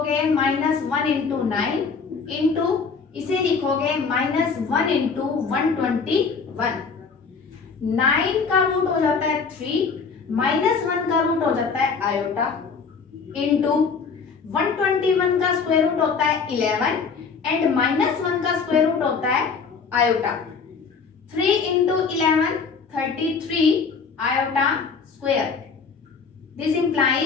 -1 इंटू 9 इंटू इसे लिखोगे -1 इंटू 121। 9 का रूट हो जाता है 3, -1 का रूट हो जाता है आयोटा इंटू 121 का स्क्वायर रूट होता है 11 एंड -1 का स्क्वायर रूट होता है iota. 3 into 11 33 iota square. This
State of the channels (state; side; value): quieter; right; 5.3 dB